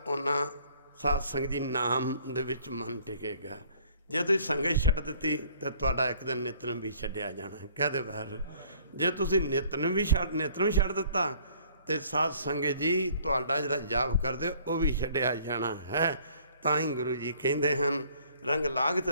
ਉਹਨਾਂ ਸਾਧ ਸੰਗਤ ਜੀ ਨਾਮ ਦੇ ਵਿੱਚ ਮਨ ਟਿਕੇਗਾ। ਜੇ ਤੁਸੀਂ ਸੰਗਤ ਛੱਡ ਦਿੱਤੀ ਤਾਂ ਤੁਹਾਡਾ ਇੱਕ ਦਿਨ ਨਿਤਨੇਮ ਵੀ ਛੱਡਿਆ ਜਾਣਾ। ਕਹਦੇ ਬਾਹਰ ਜੇ ਤੁਸੀਂ ਨਿਤਨੇਮ ਛੱਡ ਦਿੱਤਾ ਤੇ ਸਾਧ ਸੰਗਤ ਜੀ ਤੁਹਾਡਾ ਜਿਹੜਾ ਜਾਪ ਕਰਦੇ ਉਹ ਵੀ ਛੱਡਿਆ ਜਾਣਾ ਹੈ। ਤਾਂ ਹੀ ਗੁਰੂ ਜੀ ਕਹਿੰਦੇ ਹਨ ਰੰਗ ਲਾਗਤ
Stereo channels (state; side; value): inverted; both; correlation -0.57